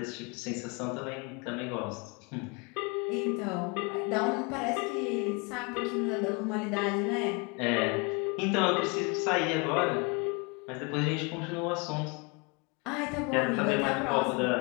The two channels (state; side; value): quieter; right; 30.6 dB